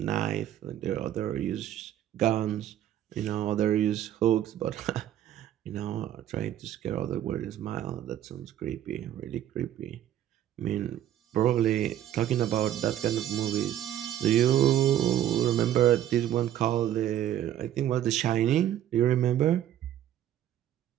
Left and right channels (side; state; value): left; quieter; 11.5 dB